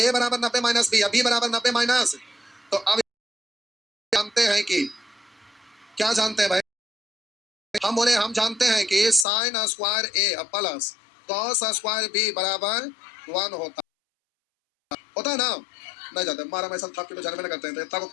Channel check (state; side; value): drops out; right; at 9.2 s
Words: बराबर 90 माइनस बी, या बी बराबर 90 माइनस, तो अब जानते हैं कि, क्या जानते हैं भाई, हम बोले हम जानते हैं कि साइन स्क्वायर ए प्लस कॉस स्क्वायर बी बराबर 1 होता है ना, नहीं जाते, मारा मैं सब के तो जन्म में करते हैं, तो इतना को